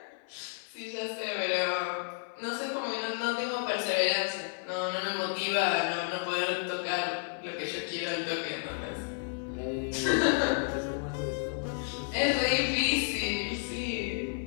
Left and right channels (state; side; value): silent; right; 57 dB below the other